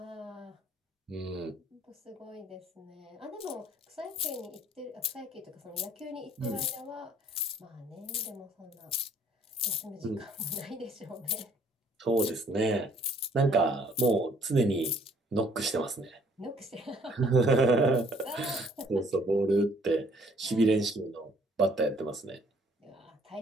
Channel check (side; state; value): both; normal; correlation 0.60